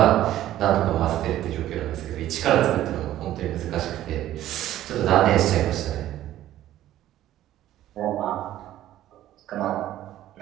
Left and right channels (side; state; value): left; quieter; 13.3 dB